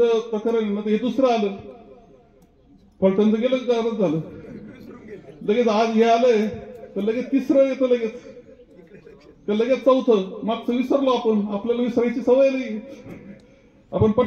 प्रकरण ना, हे दुसरं आलं. फलटणचं गेलं गारच झालं, लगेच आज हे आलंय तर लगेच तिसरं येतं, लगेच चौथं. मागचं विसरलो आपण, आपल्याला विसरायची सवय नाही, आपण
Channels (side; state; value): both; identical; correlation 1.00